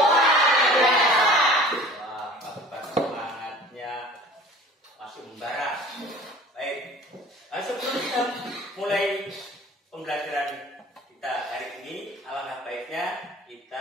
luar biasa. Wah, pagi-pagi semangatnya masih membara. Baik, sebelum kita mulai pembelajaran kita hari ini, alangkah baiknya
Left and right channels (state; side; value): normal; both; correlation 0.45